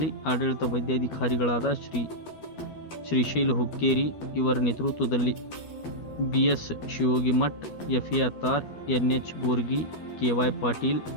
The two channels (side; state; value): right; late; 12 ms